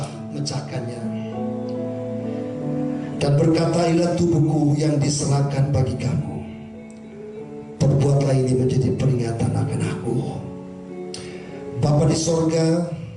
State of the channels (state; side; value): identical; both; correlation 1.00